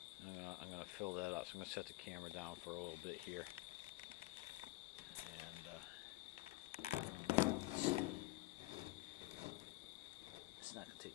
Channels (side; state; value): right; quieter; 19.7 dB